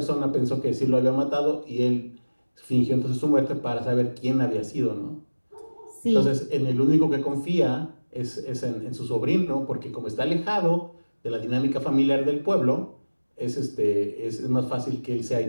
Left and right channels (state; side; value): inverted; both; correlation -1.00